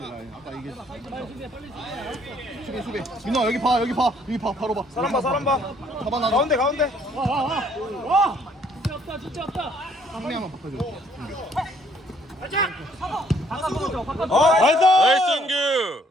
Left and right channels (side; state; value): both; normal; correlation 0.64